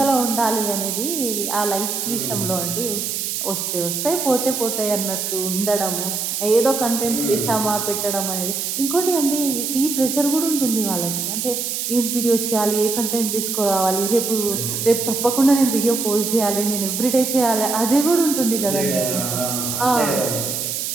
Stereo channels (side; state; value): right; noise; hiss, 2 dB below the sound